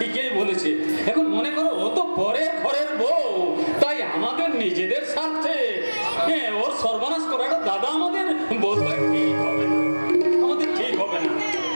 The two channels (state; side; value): inverted; both; correlation -1.00